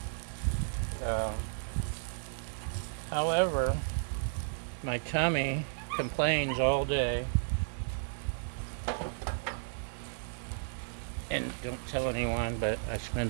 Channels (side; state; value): left; silent; 55 dB below the other